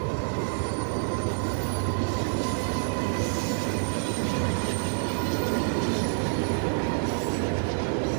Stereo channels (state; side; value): silent; left; 56 dB below the other